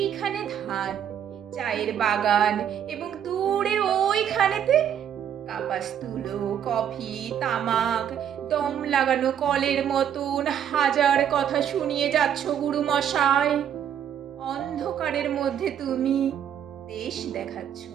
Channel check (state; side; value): quieter; left; 9.3 dB